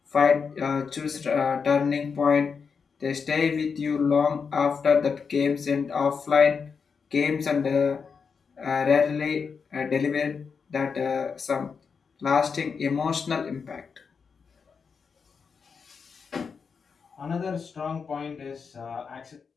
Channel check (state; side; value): quieter; right; 5.7 dB